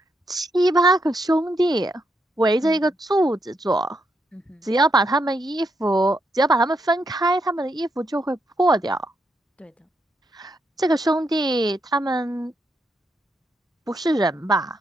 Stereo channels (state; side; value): normal; both; correlation 0.80